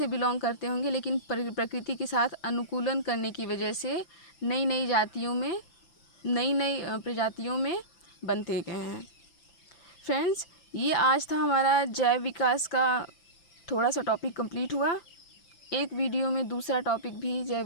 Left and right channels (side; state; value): right; late; 5.9 ms